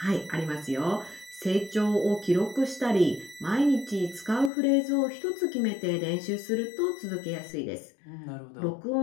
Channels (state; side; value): drops out; right; at 4.5 s